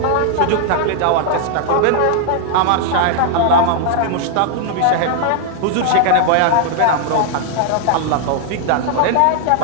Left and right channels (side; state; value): both; different; correlation 0.00